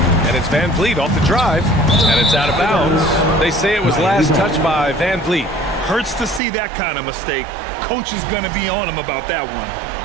And it's Van Vliet off the drive, and it's out of bounds. They say it was last touched by Van Vliet. Hurts to see that kind of mistake. Coach is going to be on him about that one.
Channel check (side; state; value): left; drops out; at 6.4 s